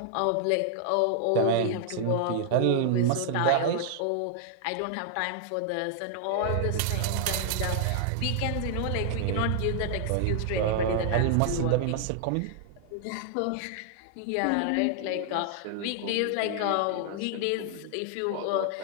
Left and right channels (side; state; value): both; different; correlation 0.00